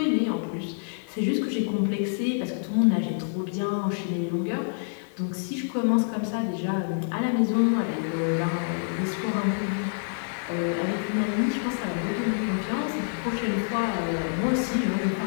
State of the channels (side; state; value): right; silent; 60 dB below the other